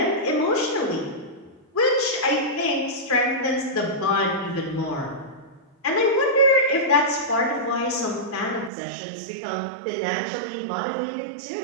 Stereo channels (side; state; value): left; drops out; at 8.7 s